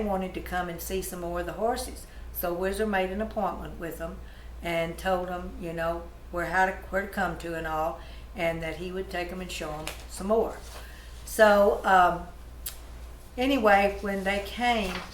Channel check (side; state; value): both; identical; correlation 1.00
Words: to come and see some more of the horses. So Whizzer made an appointment with them and told them, you know, where to come to and all, and that he would take them and show them some more. So anyway, when they came,